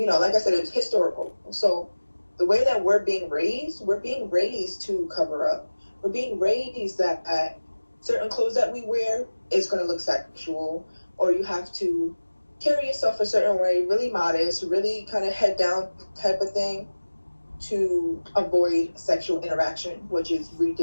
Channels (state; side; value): inverted; both; correlation -1.00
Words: know, like I said, it's historical. So the way that we're being raised to cover up. We're being raised that certain clothes that we wear is going to look sexual, or you have to carry yourself a certain way, really modest, really kind of head down type of thing, to avoid sexual interaction, which is